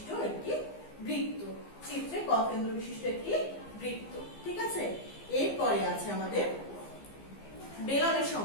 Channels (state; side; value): late; right; 15 ms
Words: একটি বৃত্ত। চিত্রে ক কেন্দ্র বিশিষ্ট একটি বৃত্ত। ঠিক আছে, এরপরে আছে আমাদের বেলনের